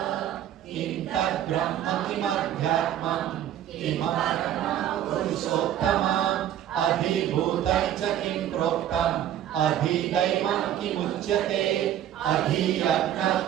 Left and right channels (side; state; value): left; quieter; 11.3 dB